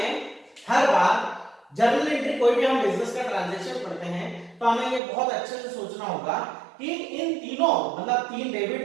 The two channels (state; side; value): drops out; left; at 5.0 s